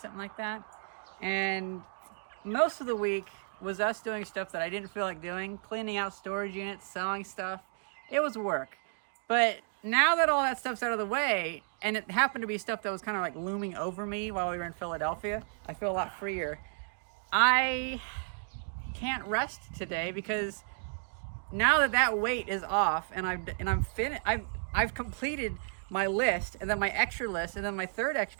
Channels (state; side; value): silent; left; digital silence